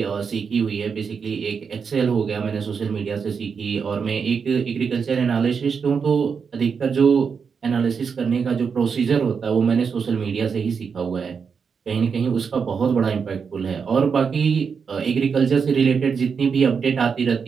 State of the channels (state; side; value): quieter; left; 6.0 dB